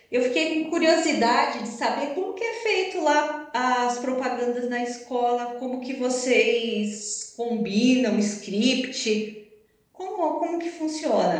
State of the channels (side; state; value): both; identical; correlation 1.00